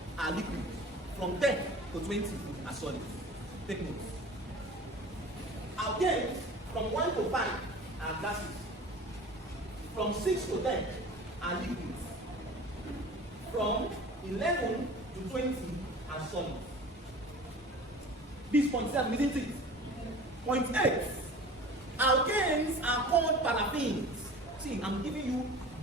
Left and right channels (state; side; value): normal; both; correlation 0.40